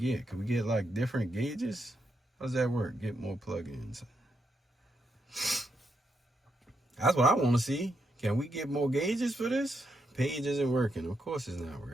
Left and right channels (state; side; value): normal; both; correlation 0.81